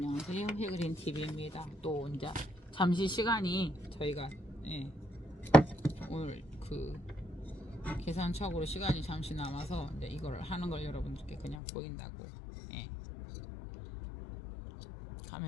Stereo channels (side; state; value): right; drops out; at 11.6 s